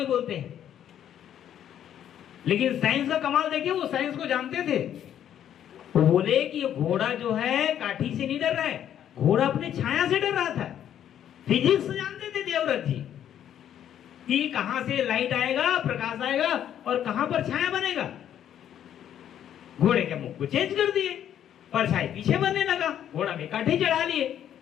बोलते हैं, लेकिन साइंस का कमाल देखिए, वो साइंस को जानते थे। वो बोले कि ये घोड़ा जो है काठी से नहीं डर रहा है, घोड़ा अपने छाया से डर रहा था। फिजिक्स जानते थे देवव्रत जी कि कहां से लाइट आएगा, प्रकाश आएगा और कहां पर छाया बनेगा। घोड़े के मुख को चेंज कर दिए, परछाई पीछे बनने लगा, घोड़ा में काठी चढ़ा लिए।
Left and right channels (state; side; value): quieter; right; 10.2 dB